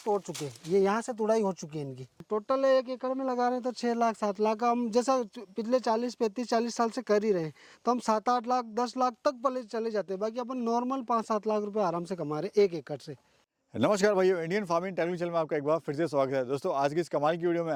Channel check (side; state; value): both; identical; correlation 1.00